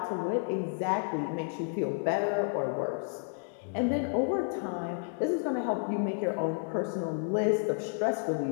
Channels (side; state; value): right; silent; 57 dB below the other